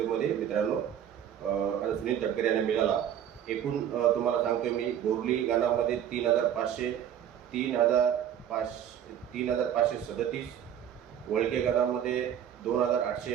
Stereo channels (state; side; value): quieter; left; 9.8 dB